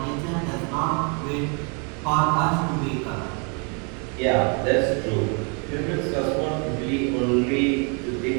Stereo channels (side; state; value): left; quieter; 36.3 dB